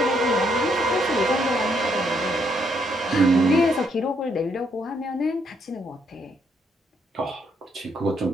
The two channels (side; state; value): both; normal; correlation 0.73